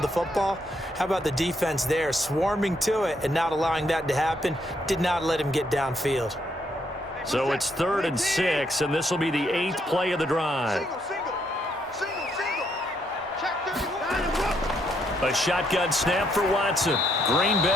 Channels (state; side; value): normal; both; correlation 0.74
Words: the football. How about the defense there, swarming to it and not allowing that to happen? Did not let him get downfield. So it's 3rd and 6, and this will be the 8th play of the drive. A shotgun snap for Watson. Green